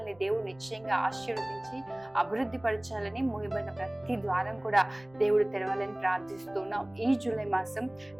దేవుడు నిశ్చయంగా ఆశీర్వదించి అభివృద్ధి పరచాలని, మూయబడిన ప్రతి ద్వారం కూడా దేవుడు తెరవాలని ప్రార్థిస్తున్నాం. ఈ జూలై మాసం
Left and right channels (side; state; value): right; noise; rumble, 27 dB below the sound